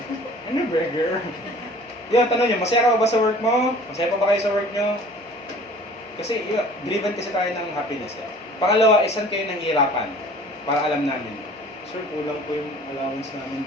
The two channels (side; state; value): both; normal; correlation 0.48